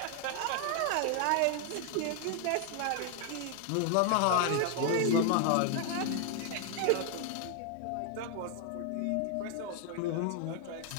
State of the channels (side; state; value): both; different; correlation 0.00